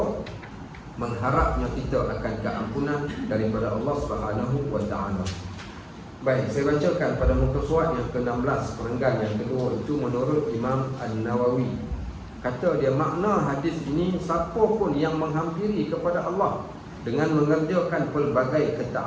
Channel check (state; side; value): identical; both; correlation 1.00